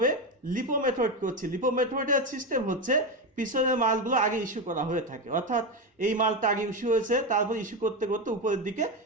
লিপো মেথড করছি। লিপো মেথডের সিস্টেম হচ্ছে পিছনের মালগুলো আগে ইস্যু করা হয়ে থাকে, অর্থাৎ এই মালটা আগে ইস্যু হয়েছে, তারপর ইস্যু করতে করতে উপরের দিকে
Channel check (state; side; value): normal; both; correlation 0.14